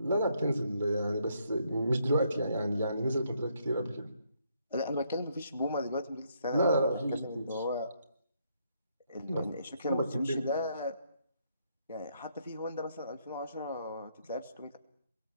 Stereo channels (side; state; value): both; inverted; correlation -0.72